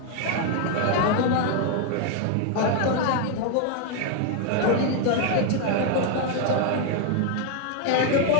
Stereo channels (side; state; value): both; different; correlation 0.01